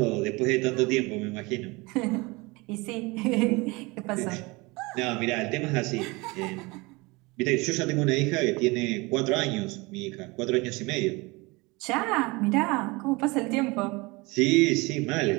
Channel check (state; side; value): quieter; left; 24.6 dB